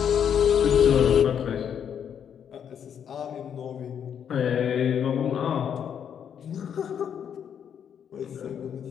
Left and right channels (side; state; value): right; quieter; 8.4 dB